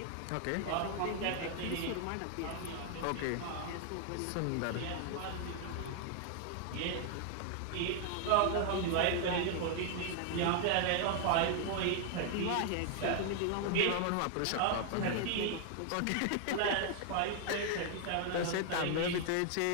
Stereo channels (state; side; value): different; both; correlation 0.00